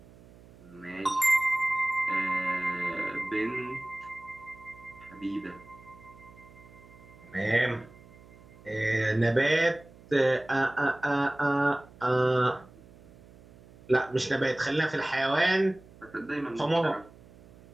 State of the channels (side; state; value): right; noise; hum, 23 dB below the sound